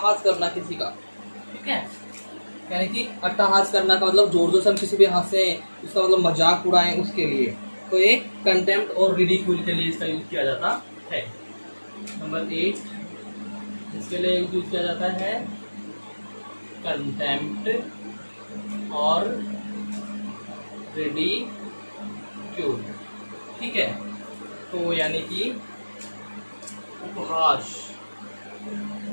करना किसी का, ठीक है, यानी कि अट्टहास करना का मतलब जोर जोर से हम किसी पे हंसे, उसका मतलब मजाक उड़ाएं उसके लिए, तो ये कंटेम्प्ट और रिडिक्यूल के लिए इसका यूज किया जाता है। नंबर 8 इसके लिए यूज किया जाता है कंटेम्प्ट और रिडिक्यूल, ठीक है, तो यानी कि उपहास,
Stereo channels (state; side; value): inverted; both; correlation -1.00